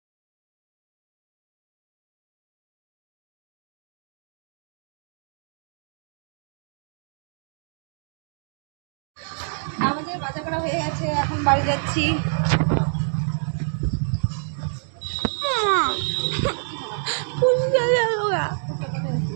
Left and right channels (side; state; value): left; silent; digital silence